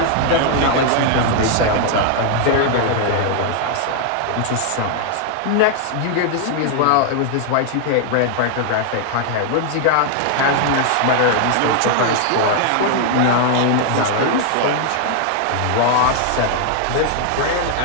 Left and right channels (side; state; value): both; different; correlation 0.00